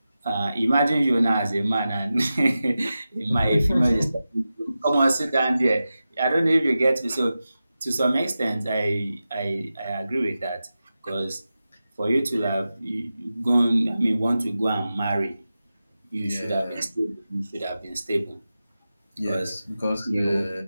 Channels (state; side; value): inverted; both; correlation -0.93